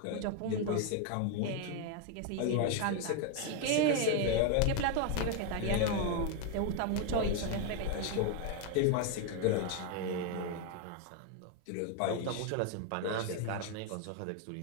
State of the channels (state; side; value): different; both; correlation 0.01